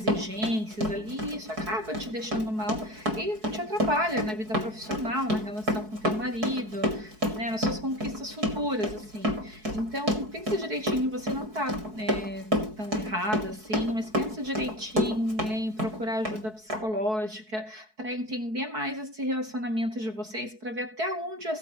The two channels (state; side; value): late; left; 4.6 ms